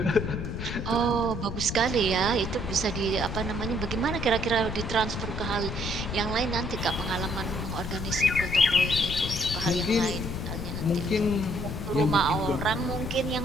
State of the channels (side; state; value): left; noise; rumble, 5 dB below the sound